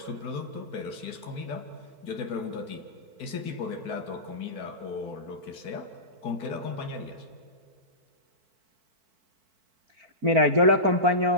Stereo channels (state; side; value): late; left; 4.5 ms